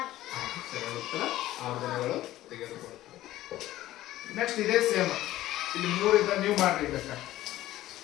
ಸರಿ ಉತ್ತರ 6 ದಿನಗಳು ತೆಗೆದುಕೊಳ್ತಾರೆ. ನೆಕ್ಸ್ಟ್ ಇದೇ ಸೇಮ್. ಇಲ್ಲಿ 3 ಇದ್ದ ನೀವು ಮಾಡ್ರಿ. ಬೇಕಾ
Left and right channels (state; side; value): quieter; right; 15.0 dB